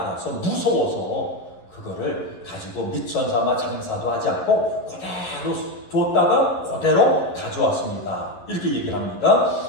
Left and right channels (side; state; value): right; late; 11 ms